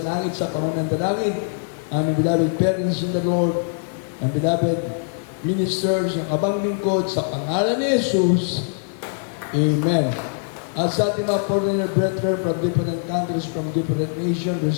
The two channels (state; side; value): silent; right; 63 dB below the other